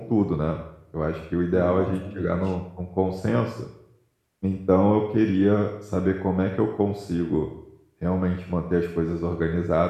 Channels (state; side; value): identical; both; correlation 1.00